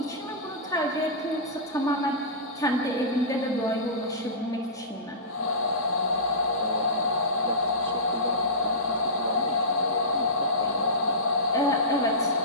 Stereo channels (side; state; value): both; normal; correlation -0.20